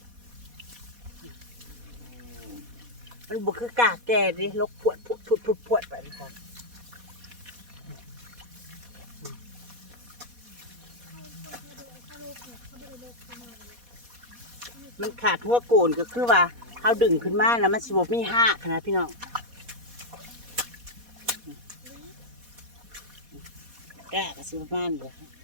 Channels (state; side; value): late; left; 4.2 ms